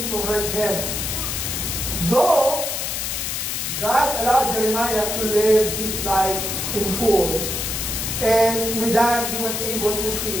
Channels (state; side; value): noise; left; hiss, 2 dB below the sound